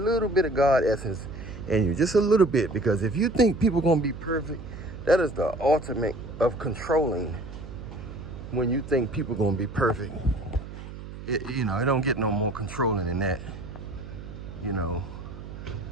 bit of God essence in you, just a little bit, because if you think people gonna be perfect, that is the ultimate of controlling. When you think people gonna be perfect, it don't get no more controlling than that. You know,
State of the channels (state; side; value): noise; right; hum, 12 dB below the sound